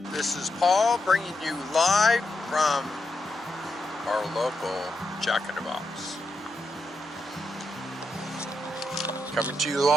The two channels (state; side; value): normal; both; correlation 0.84